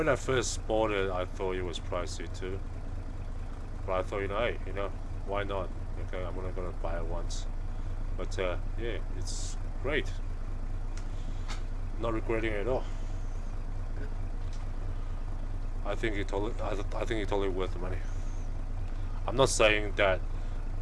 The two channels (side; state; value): both; identical; correlation 1.00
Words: I first bought it, I thought it was pricey too. But I thought, hey, why not? Okay, I'm only gonna buy it once. But yeah, it's great. Not regretting it at all. I think it's totally worth the money. I'm not saying that